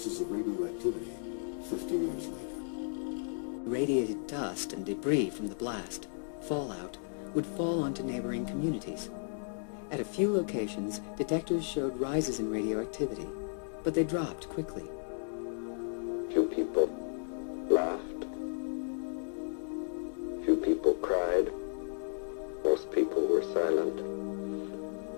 of radioactivity 50 years later. Radiated dust and debris from the blast, fallout, would fall onto neighboring communities. At a few locations, detectors showed rises in radioactivity, but they dropped quickly. Few people laughed. Few people cried. Most people were silent.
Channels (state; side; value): silent; right; digital silence